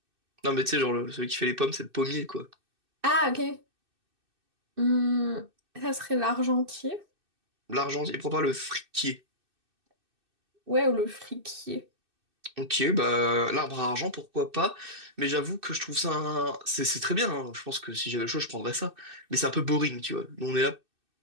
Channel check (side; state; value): left; late; 2.6 ms